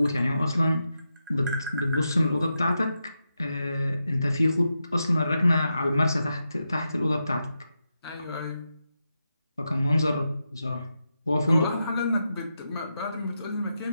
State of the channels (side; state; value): both; inverted; correlation -0.87